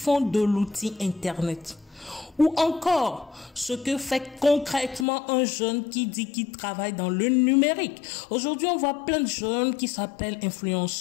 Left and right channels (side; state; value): right; drops out; at 5.1 s